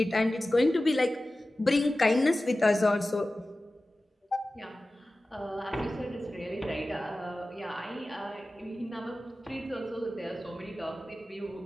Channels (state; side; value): normal; both; correlation 0.96